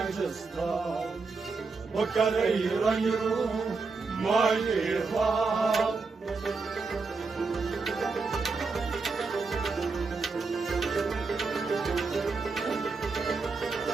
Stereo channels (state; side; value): quieter; left; 4.3 dB